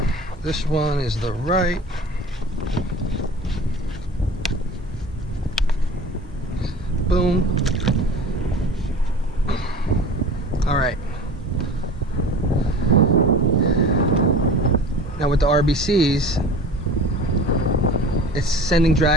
This one is the right. Boom. All right. Now with the R.B.Cs, it's sending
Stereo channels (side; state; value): both; normal; correlation 0.39